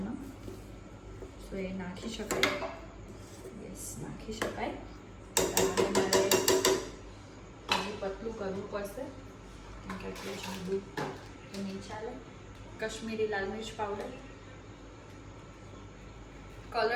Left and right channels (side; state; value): both; identical; correlation 1.00